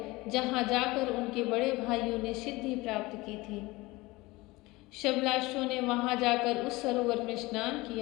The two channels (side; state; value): right; quieter; 21.5 dB